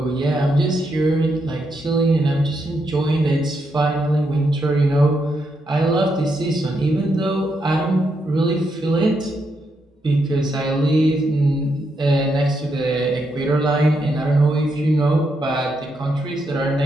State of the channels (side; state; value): both; normal; correlation 0.80